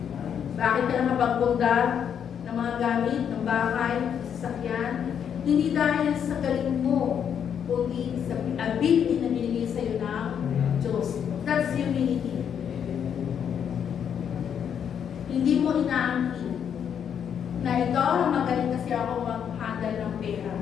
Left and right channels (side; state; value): right; quieter; 8.2 dB